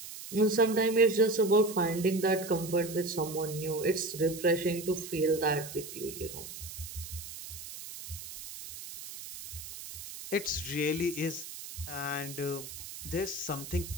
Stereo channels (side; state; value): right; noise; hiss, 11 dB below the sound